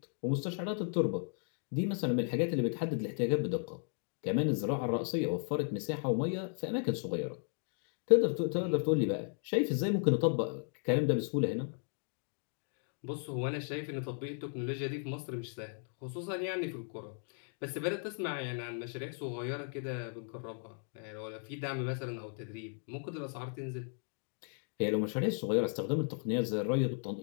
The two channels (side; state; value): right; silent; 54 dB below the other